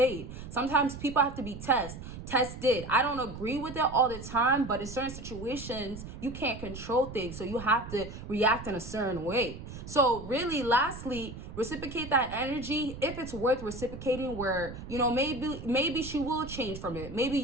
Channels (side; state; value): right; noise; rumble, 11 dB below the sound